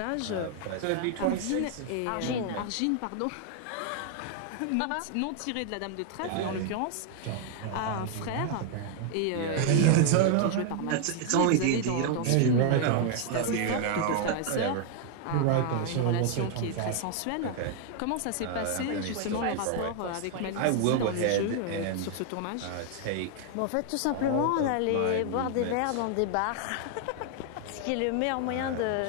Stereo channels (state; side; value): different; both; correlation 0.00